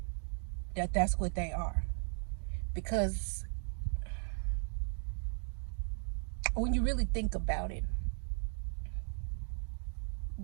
that's what they are. Because when you really think about it,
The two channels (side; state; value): left; silent; 53 dB below the other